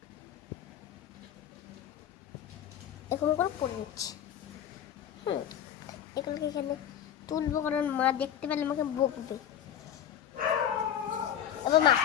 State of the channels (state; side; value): quieter; right; 9.8 dB